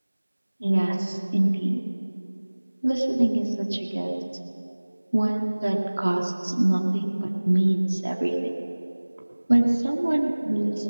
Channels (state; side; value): inverted; both; correlation -1.00